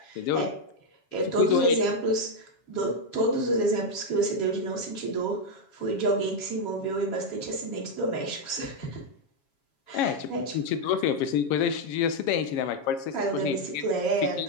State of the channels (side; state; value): right; late; 7.3 ms